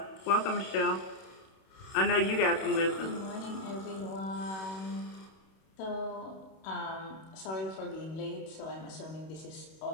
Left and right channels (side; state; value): right; late; 31 ms